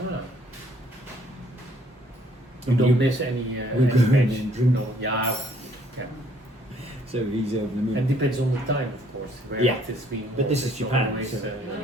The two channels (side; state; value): both; normal; correlation 0.63